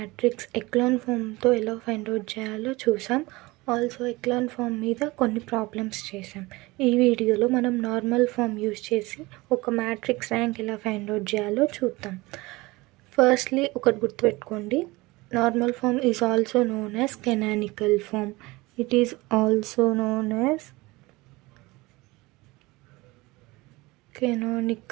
echelon ఫామ్తో ఎలా find out చేయాలో చూసాం. ఆల్సో ఎక్లాన్ ఫామ్ మీద కొన్ని ప్రాబ్లమ్స్ చేసాం. ఈ వీడియోలో మనం నార్మల్ ఫామ్ యూజ్ చేసి ఒక మ్యాట్రిక్స్ ర్యాంక్ ఎలా ఫైండ్ అవుట్ చేయాలో చూద్దాం. ఫస్ట్లీ ఒకటి గుర్తుపెట్టుకోండి, normal form is also known as canonical form. It is also known as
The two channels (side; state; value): left; quieter; 21.9 dB